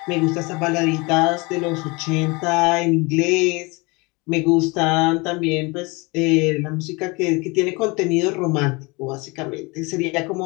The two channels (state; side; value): quieter; right; 26.4 dB